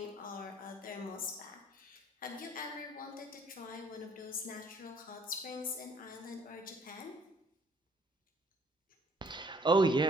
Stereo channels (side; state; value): both; normal; correlation 0.60